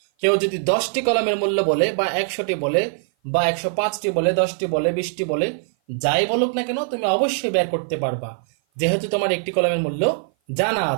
কেউ যদি 10টি কলমের মূল্য বলে বা 100টি বলে বা 105টি বলে, 10টি বলে, 20টি বলে, যাই বলুক না কেন তুমি অবশ্যই বের করতে পারবা, যেহেতু তোমার একটি কলমের মূল্য জানা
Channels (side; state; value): left; silent; 56 dB below the other